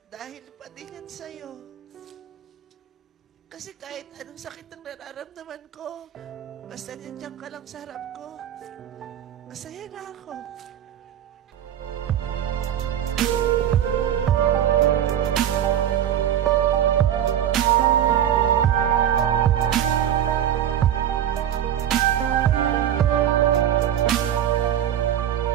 dahil pa din yan sa'yo. Kasi kahit anong sakit ang nararamdaman ko, basta nandiyan ka lang sa harap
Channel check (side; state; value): left; quieter; 10.4 dB